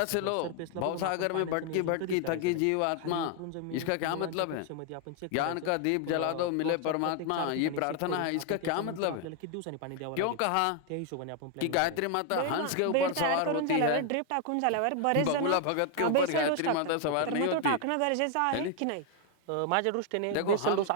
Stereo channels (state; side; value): different; both; correlation 0.00